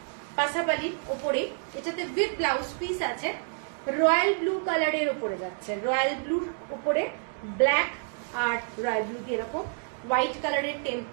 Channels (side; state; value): left; silent; 59 dB below the other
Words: পাসাপালির ওপরেই, এটাতে উইথ ব্লাউজ পিস আছে। রয়্যাল ব্লু কালারের উপরে যাচ্ছে, রয়্যাল ব্লুর উপরে ব্ল্যাক আর রয়্যাল ব্লু দিয়ে এরকম হোয়াইট কালারের